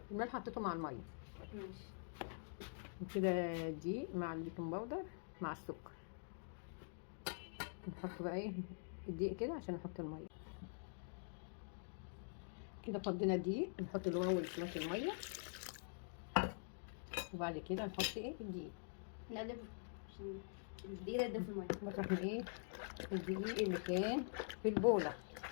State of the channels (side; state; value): right; silent; digital silence